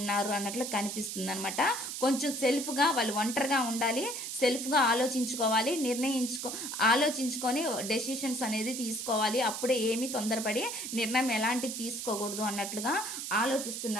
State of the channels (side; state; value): right; noise; hiss, 5 dB below the sound